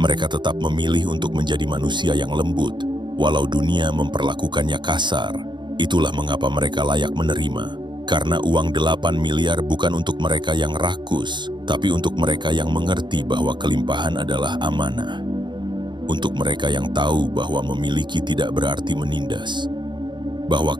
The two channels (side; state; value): left; late; 0.22 ms